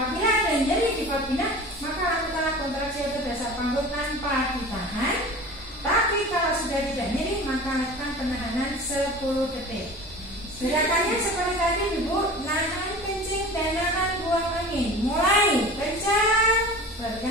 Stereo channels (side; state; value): both; normal; correlation 0.37